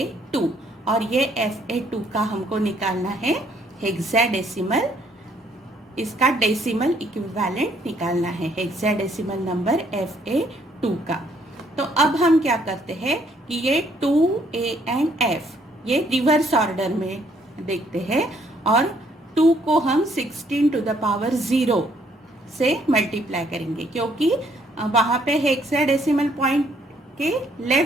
और ये FA2 का हमको निकालना है हेक्साडेसिमल, इसका डेसिमल इक्विवेलेंट निकालना है हेक्साडेसिमल नंबर FA2 का। तो अब हम क्या करते हैं कि ये 2A एंड F ये रिवर्स ऑर्डर में देखते हैं, और 2 को हम 16 टू द पावर 0 से मल्टीप्लाई करेंगे, क्योंकि वहाँ पे हेक्साडेसिमल पॉइंट के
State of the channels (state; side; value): normal; both; correlation 0.67